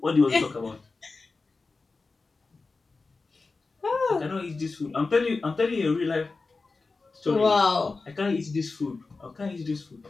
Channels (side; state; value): right; quieter; 3.9 dB